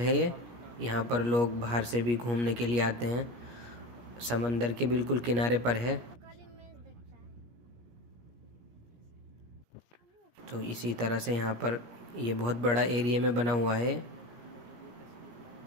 ये। यहाँ पर लोग बाहर से भी घूमने के लिए आते हैं। समंदर के बिल्कुल किनारे पर है। तो इसी तरह से यहाँ पर ये बहुत बड़ा एरिया में बना हुआ है।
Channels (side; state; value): left; late; 17 ms